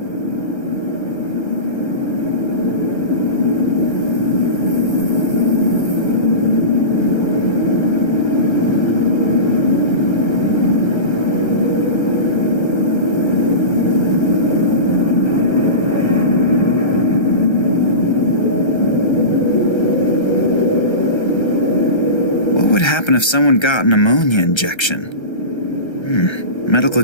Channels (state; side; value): late; right; 1.3 ms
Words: What would happen if someone got an ammonia injection? Medical